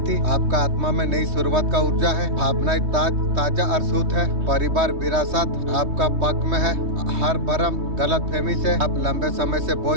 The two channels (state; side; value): late; left; 3.2 ms